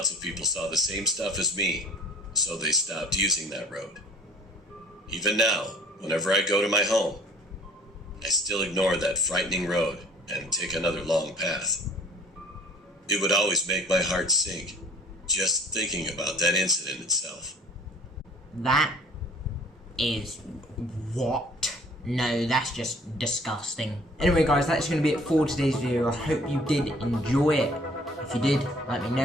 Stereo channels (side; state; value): both; normal; correlation 0.51